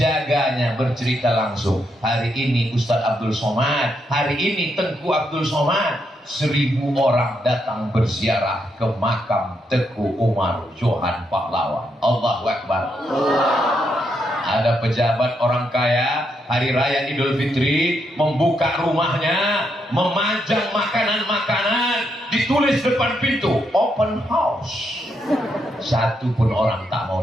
bercerita langsung, hari ini Ustadz Abdul Somad, hari ini Tengku Abdul Somad, 1000 orang datang berziarah ke makam Teguh Umar Johan Pahlawan. Allahu Akbar. Ada pejabat orang kaya, hari raya Idul Fitri, membuka rumahnya, memajang makanan-makanan, ditulis depan pintu, open house. Satu pun orang tak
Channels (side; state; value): both; normal; correlation 0.79